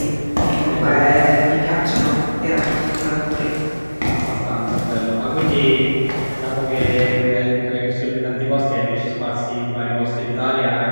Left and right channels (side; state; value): both; inverted; correlation -1.00